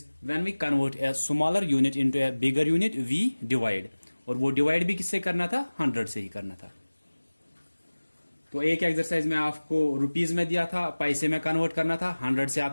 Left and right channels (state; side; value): inverted; both; correlation -1.00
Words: when we convert a smaller unit into a bigger unit, we divide. और वो डिवाइड भी किससे करना था? 100 से ही करना था। तो एक एक्सरसाइज में आपको रुपीज में दिया था, पैसे में कन्वर्ट करना था, 100 से